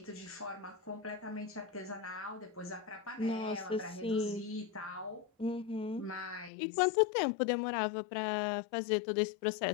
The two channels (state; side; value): drops out; right; at 6.5 s